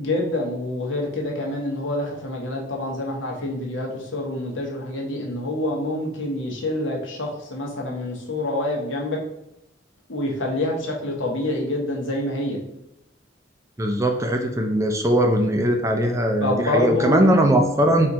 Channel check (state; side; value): normal; both; correlation 0.49